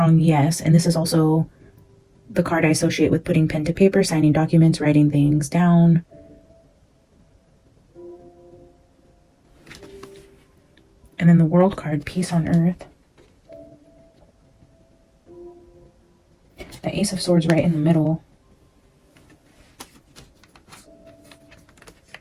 yes, and this is also the card I associate with putting pen to paper, signing documents, writing things down. And then the World card, Peace on Earth. The Ace of Swords right in the middle.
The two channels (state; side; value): identical; both; correlation 1.00